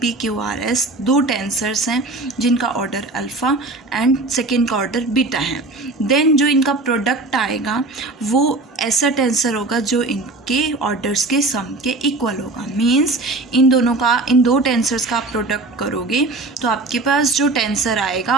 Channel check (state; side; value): quieter; left; 3.1 dB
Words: Q R S, दो टेंसर्स हैं जिनका ऑर्डर अल्फ़ा एंड सेकेंड का ऑर्डर बीटा है, देन जो इनका प्रोडक्ट आएगा वो ऐसा टेंसर होगा जो इनके ऑर्डर्स के सम के इक्वल होगा। मीन्स इन दो टेंसर्स का आप प्रोडक्ट करोगे तो आपके पास जो टेंसर